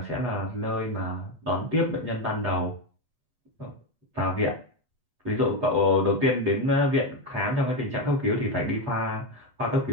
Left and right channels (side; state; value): left; late; 8.2 ms